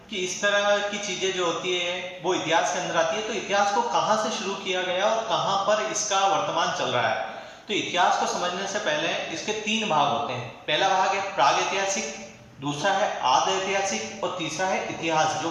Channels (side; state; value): both; identical; correlation 1.00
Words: कि इस तरह की चीजें जो होती है वो इतिहास के अंदर आती है, तो इतिहास को कहां से शुरू किया गया और कहां पर इसका वर्तमान चल रहा है। तो इतिहास को समझने से पहले इसके 3 भाग होते हैं। पहला भाग है प्राग ऐतिहासिक, दूसरा है आद ऐतिहासिक और तीसरा है इतिहास जो